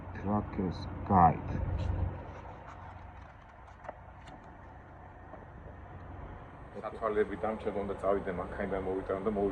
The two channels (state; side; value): identical; both; correlation 1.00